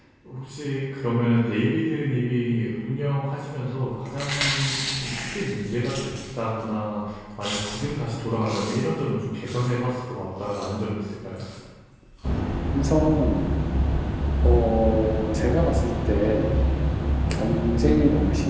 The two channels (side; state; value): both; identical; correlation 1.00